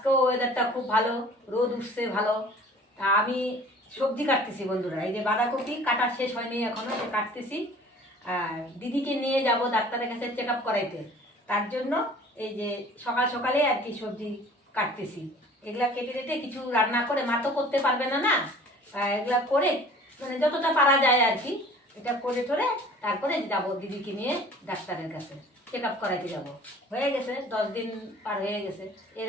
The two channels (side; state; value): both; normal; correlation 0.48